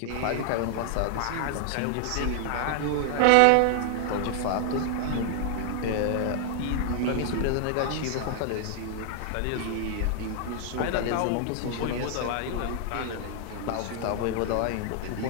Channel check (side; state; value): both; different; correlation 0.00